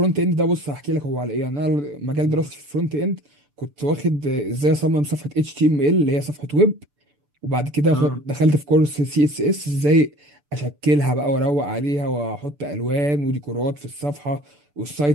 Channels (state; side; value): late; left; 6.9 ms